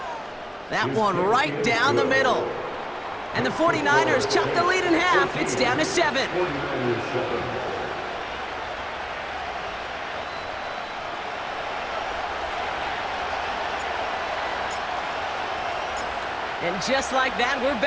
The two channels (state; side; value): identical; both; correlation 1.00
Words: That one right down the middle. And the 49ers chop the lead in half. It's down to 7. And just like that, we're